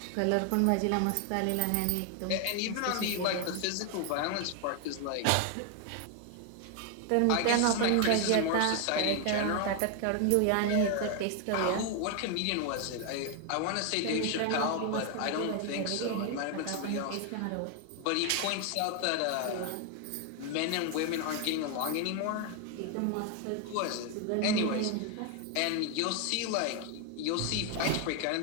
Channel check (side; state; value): both; different; correlation 0.01